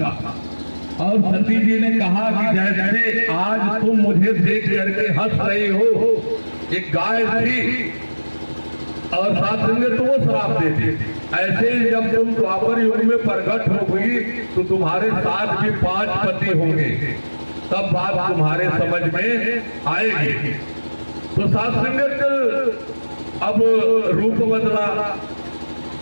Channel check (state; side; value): inverted; both; correlation -1.00